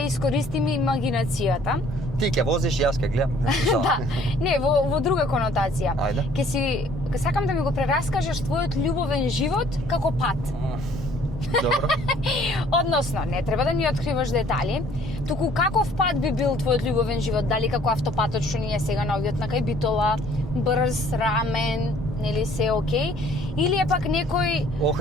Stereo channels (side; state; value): both; normal; correlation 0.57